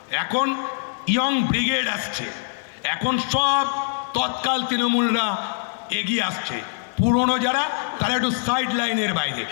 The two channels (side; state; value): right; silent; digital silence